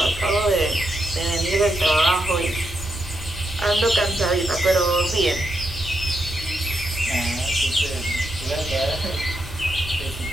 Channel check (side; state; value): both; normal; correlation 0.83